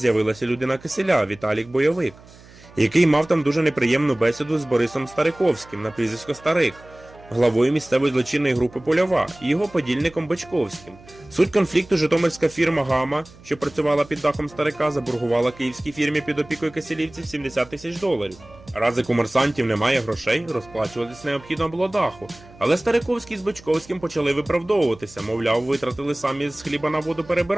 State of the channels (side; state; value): right; noise; hum, 23 dB below the sound